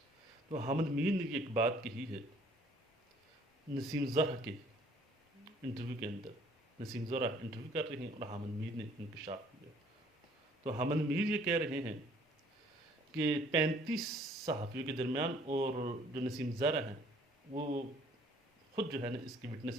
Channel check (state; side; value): normal; both; correlation 0.59